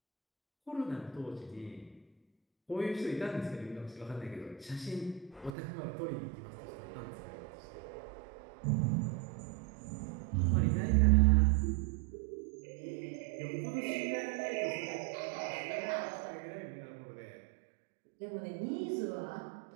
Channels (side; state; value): left; drops out; at 5.5 s